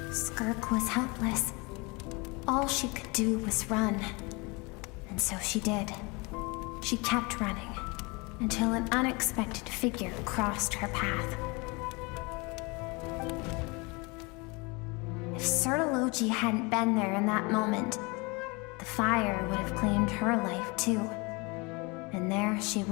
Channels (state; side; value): quieter; right; 27.8 dB